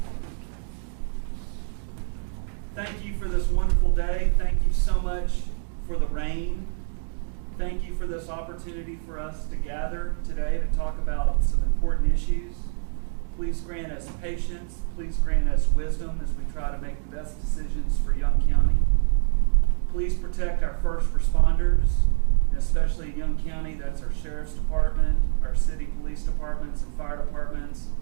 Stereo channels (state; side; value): silent; left; 59 dB below the other